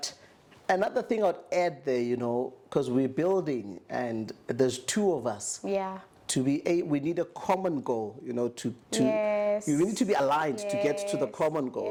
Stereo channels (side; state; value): both; identical; correlation 1.00